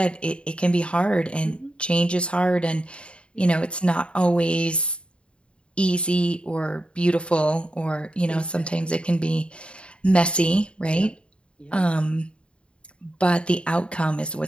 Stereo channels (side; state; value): right; late; 0.056 ms